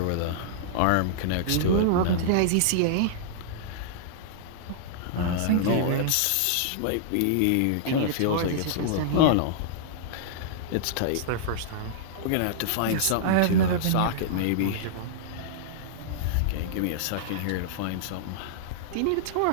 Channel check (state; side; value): different; both; correlation -0.02